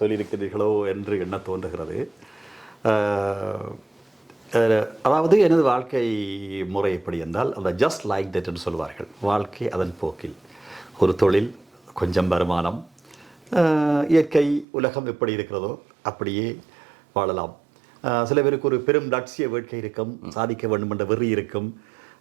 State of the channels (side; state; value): left; drops out; at 14.7 s